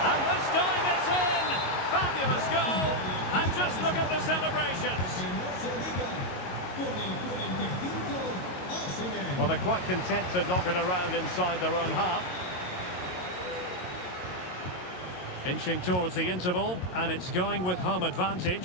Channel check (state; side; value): late; right; 22 ms